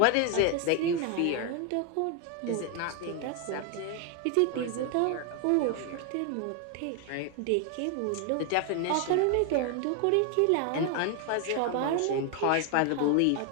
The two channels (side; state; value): both; different; correlation 0.01